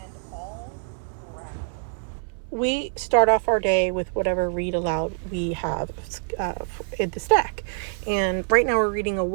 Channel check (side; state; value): left; silent; 62 dB below the other